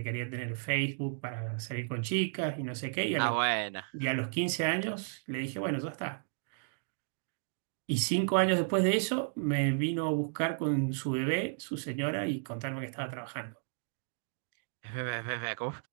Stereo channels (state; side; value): silent; left; digital silence